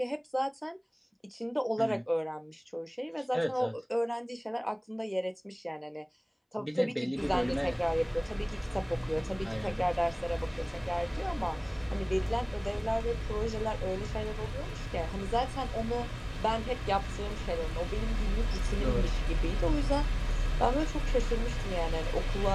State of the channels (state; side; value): identical; both; correlation 1.00